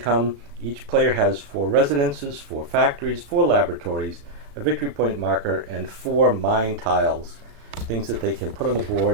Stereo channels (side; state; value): left; late; 36 ms